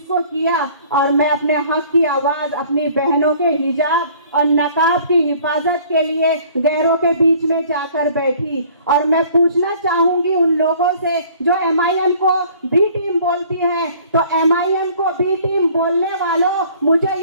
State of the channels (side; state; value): both; inverted; correlation -0.53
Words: को किया और मैं अपने हक की आवाज़ अपनी बहनों के हिजाब और नकाब की हिफाजत के लिए गैरों के बीच में जाकर बैठी। और मैं पूछना चाहूँगी उन लोगों से जो MIM को बी टीम बोलती है, तो MIM को बी टीम बोलने वालों, मुझे